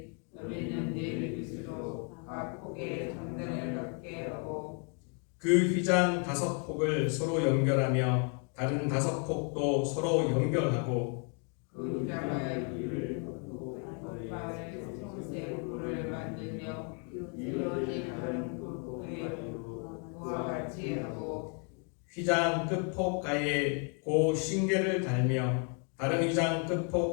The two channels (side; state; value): right; quieter; 40.0 dB